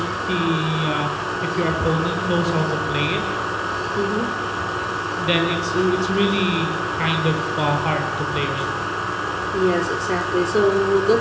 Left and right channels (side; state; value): both; identical; correlation 1.00